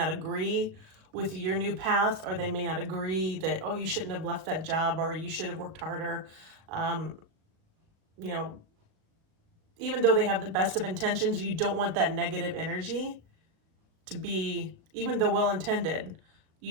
agree with your new path, or they may not agree that, oh, you shouldn't have left that job, or you should have worked harder. Even though they have the best of intentions, you don't want that negative energy to be, even though well-intended,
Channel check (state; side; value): late; left; 37 ms